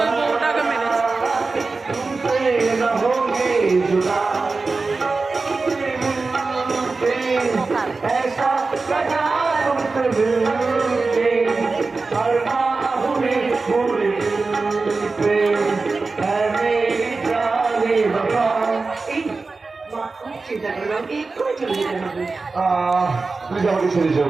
বউটাকে মেরেছে। চিন্তা করলাম একটু চলে যেতে হবে প্লিজ আমাকে ছেড়ে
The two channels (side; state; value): left; quieter; 3.9 dB